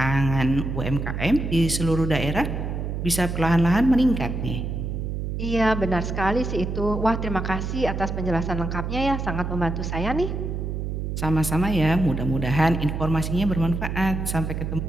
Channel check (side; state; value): right; noise; hum, 3 dB below the sound